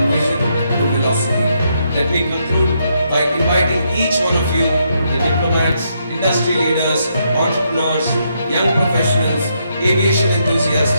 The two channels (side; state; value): both; inverted; correlation -0.77